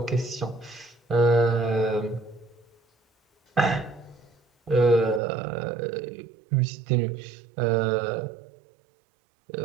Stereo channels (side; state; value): left; drops out; at 5.2 s